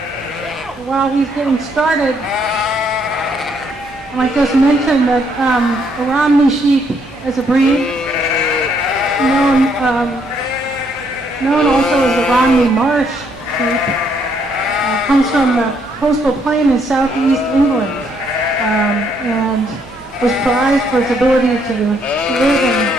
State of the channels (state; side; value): normal; both; correlation 0.71